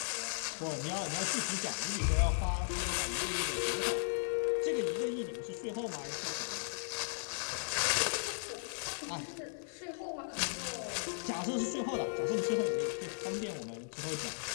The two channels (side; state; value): right; silent; 53 dB below the other